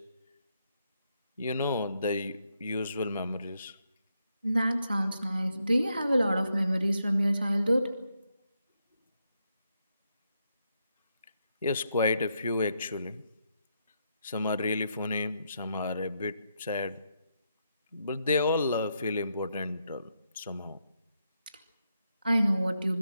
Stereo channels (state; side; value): inverted; both; correlation -0.80